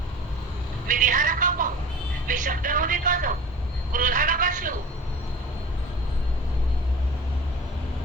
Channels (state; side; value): normal; both; correlation 0.39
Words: मी देहाला का पाहू मी शब्दामध्ये का जाऊ क्रोधाला का शिवू